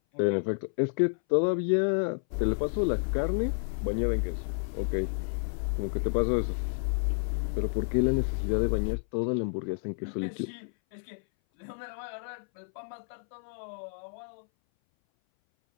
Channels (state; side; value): silent; right; 58 dB below the other